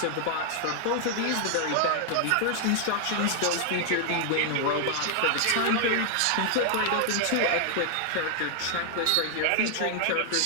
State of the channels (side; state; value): both; different; correlation 0.00